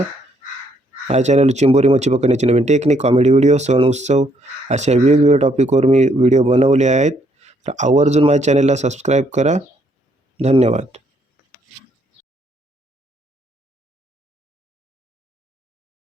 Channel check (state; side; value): normal; both; correlation 0.70